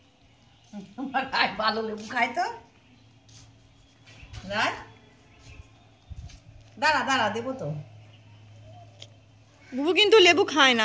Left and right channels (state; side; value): identical; both; correlation 1.00